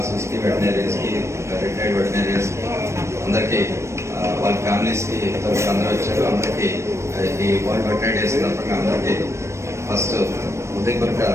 కి, వెటనరీస్ కి, రిటైర్డ్ వెటనరీస్ కి అందరికి, వాళ్ళ ఫ్యామిలీస్ కి అందరూ వచ్చారు. అందరికి ఈ వరల్డ్ వెటనరీ డే సందర్భంగా అందరికి ఫస్ట్ హృదయపూర్వక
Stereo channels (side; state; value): left; late; 0.13 ms